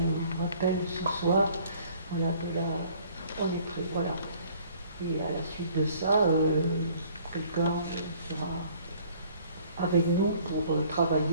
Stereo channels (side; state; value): both; inverted; correlation -0.56